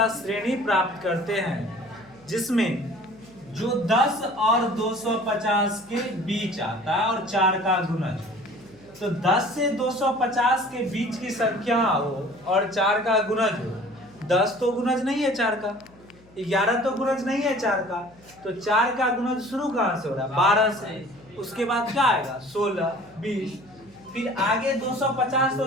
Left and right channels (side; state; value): left; noise; hum, 27 dB below the sound